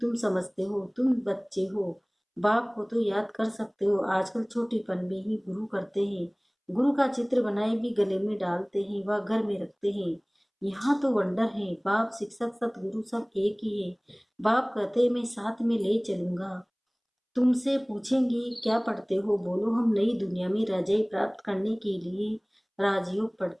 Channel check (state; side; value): identical; both; correlation 1.00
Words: तुम समझते हो, तुम बच्चे हो। बाप को तो याद कर सकते हो, आजकल छोटेपन में ही गुरु करते हैं। गुरु का चित्र बनाए भी गले में डालते हैं, वह घर में रखते हैं। यहाँ तो वंडर है, बाप शिक्षक सतगुरु सब एक ही है। बाप कहते मैं साथ में ले चलूंगा। तुमसे पूछेंगे क्या पढ़ते हो, बोलो हम नई दुनिया में राजाई प्राप्त करने के लिए राजयोग